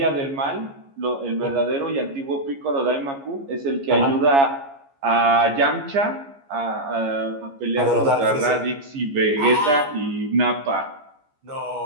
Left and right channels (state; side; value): late; left; 15 ms